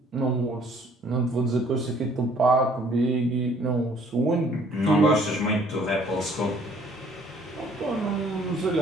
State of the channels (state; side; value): normal; both; correlation 0.59